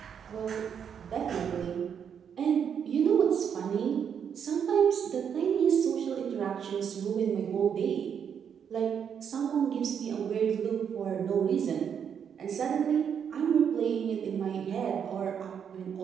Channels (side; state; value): left; quieter; 7.8 dB